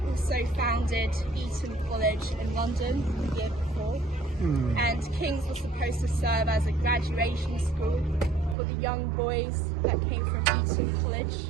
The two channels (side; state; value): left; drops out; at 8.6 s